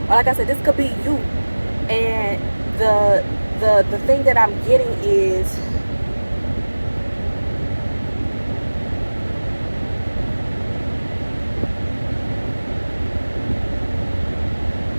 Or like I said, this could be you. And the thing that I'm getting is,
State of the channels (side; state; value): both; inverted; correlation -1.00